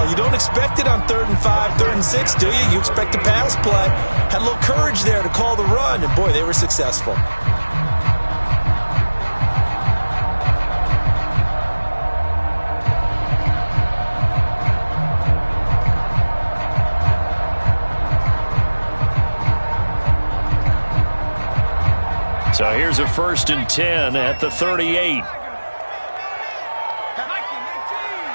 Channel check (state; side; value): inverted; both; correlation -1.00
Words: You don't expect it on 3rd and 5, 3rd and 6, do you? You expect a pass play. Had a little courage there to call the run, and boy, they were successful. So here's a 1st and 10 at the 38.